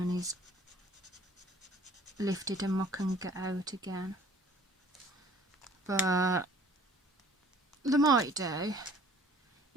is lifted and I can get out again. But they might do.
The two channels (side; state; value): both; normal; correlation 0.54